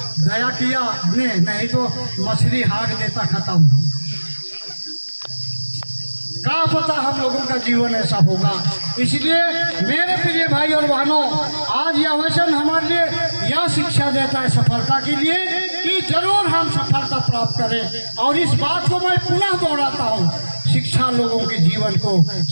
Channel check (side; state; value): both; inverted; correlation -1.00